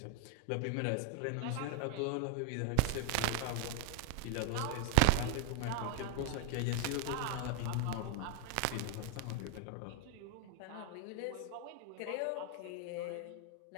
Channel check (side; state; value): both; different; correlation 0.01